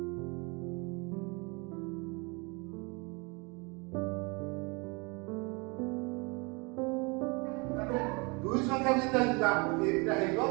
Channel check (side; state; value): left; quieter; 29.4 dB